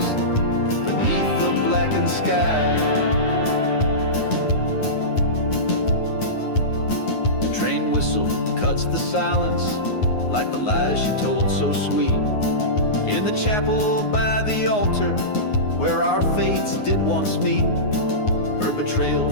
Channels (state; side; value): late; right; 9.6 ms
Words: beneath the blackened sky. Train whistle cuts the silence like the lies she told so sweet, in the chapel by the altar where our fates did once meet. Her